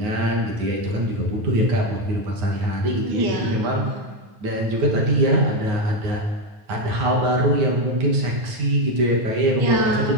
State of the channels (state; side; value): late; left; 9.5 ms